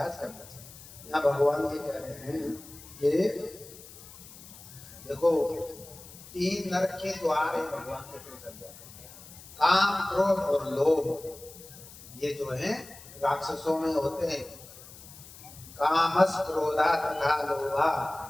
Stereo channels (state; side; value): noise; left; hiss, 18 dB below the sound